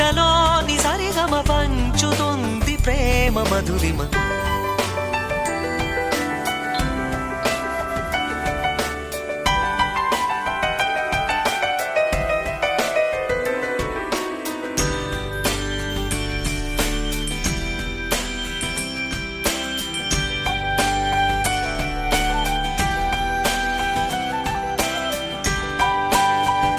సరిగమ పంచుతుంది ప్రేమ మధురిమ.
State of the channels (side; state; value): both; identical; correlation 1.00